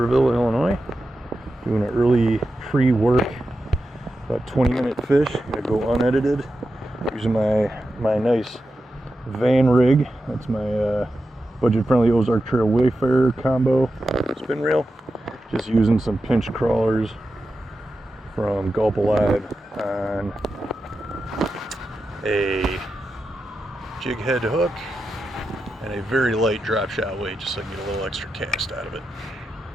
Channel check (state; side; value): normal; both; correlation 0.90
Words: Illinois. Doing an early pre-work, about 20-minute fish. Gonna go unedited. Using my nice van rig. That's my budget-friendly Ozark Trail Wayfarer combo spin reel. Just using some pinch crawlers from Gulp Alive on a jig head hook and a very light drop shot weight, just so I can get a little extra cast out of it.